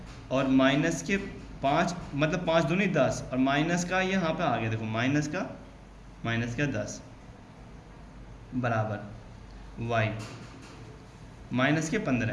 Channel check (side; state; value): both; identical; correlation 1.00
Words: और माइनस के 5 मतलब 5 दूनी 10, और माइनस का ये यहाँ पे आ गया, देखो माइनस का 10 बराबर y